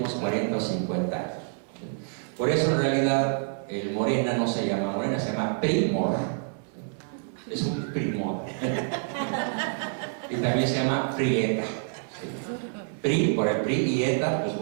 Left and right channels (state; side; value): silent; left; digital silence